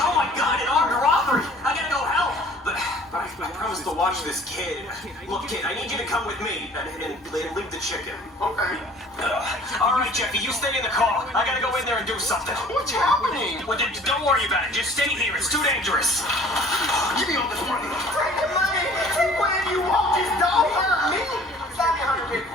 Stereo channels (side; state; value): both; normal; correlation 0.51